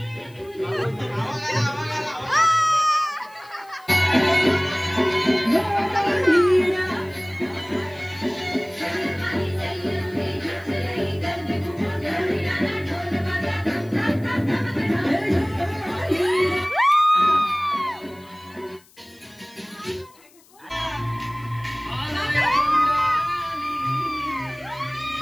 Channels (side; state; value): left; noise; hiss, 28 dB below the sound